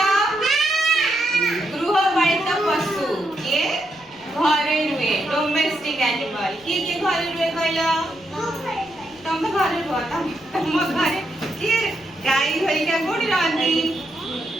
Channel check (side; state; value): left; noise; rumble, 30 dB below the sound